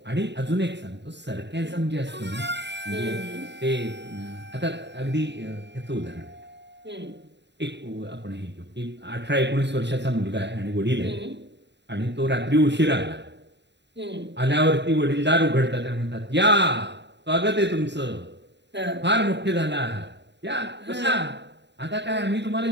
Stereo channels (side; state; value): left; late; 0.51 ms